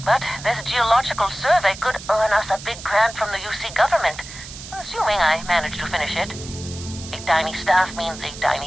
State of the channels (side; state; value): right; noise; hiss, 13 dB below the sound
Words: But this geological survey could earn us a big grant from the UC government, assuming I manage to finish it. A tiny staff means a